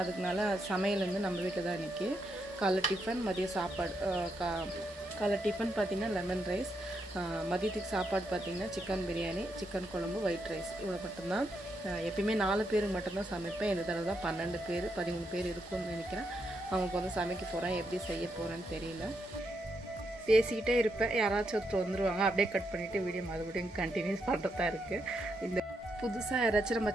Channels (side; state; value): both; normal; correlation 0.80